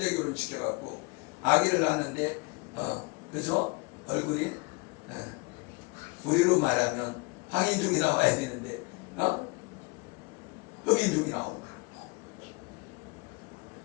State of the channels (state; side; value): quieter; right; 28.5 dB